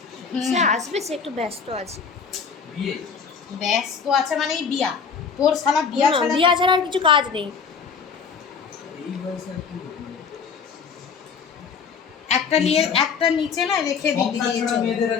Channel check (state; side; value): quieter; right; 6.0 dB